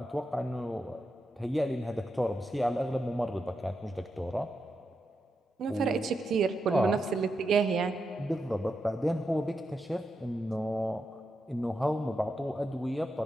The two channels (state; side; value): normal; both; correlation 0.86